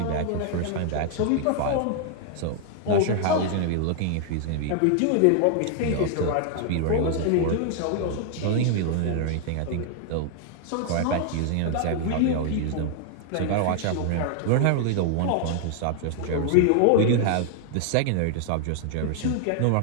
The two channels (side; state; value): both; different; correlation 0.00